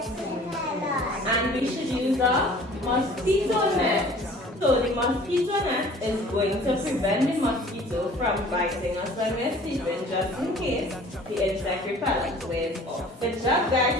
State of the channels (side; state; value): both; normal; correlation 0.49